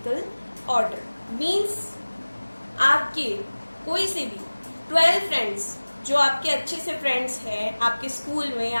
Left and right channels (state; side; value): inverted; both; correlation -1.00